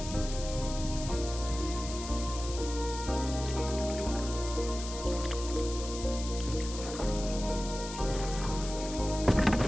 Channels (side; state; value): left; noise; hiss, 10 dB below the sound